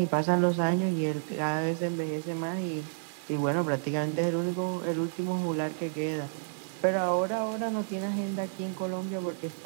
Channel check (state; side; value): silent; left; 58 dB below the other